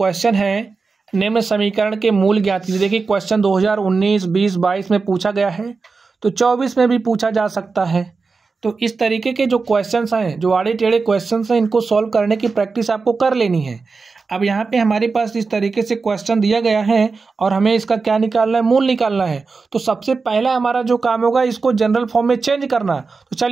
है निम्न समीकरण के मूल ज्ञात कीजिए। देखिए क्वेश्चन 2019, 20, 22 में पूछा गया है, तो 24 में भी पूछा जा सकता है। तो इस तरीके के जो क्वेश्चंस हैं, जो आड़े टेढ़े क्वेश्चंस हैं, इनको सॉल्व करने की प्रैक्टिस आपको कर लेनी है। अब यहाँ पे हमारे पास इस तरीके से क्वेश्चन दिया गया है और हमें इसका क्या निकालना है, मूल निकालना है। तो सबसे पहला हमारा जो काम होगा, इसको जनरल फॉर्म में चेंज करना। तो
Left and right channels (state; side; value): quieter; left; 4.4 dB